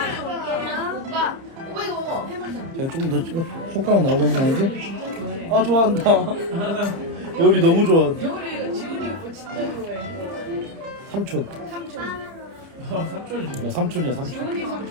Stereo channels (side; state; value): left; late; 30 ms